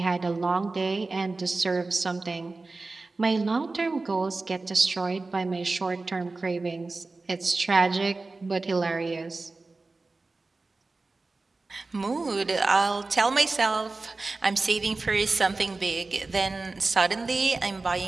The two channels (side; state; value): left; quieter; 3.5 dB